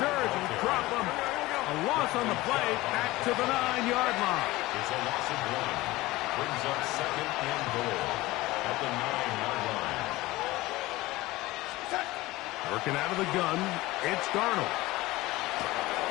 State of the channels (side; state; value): right; quieter; 19.1 dB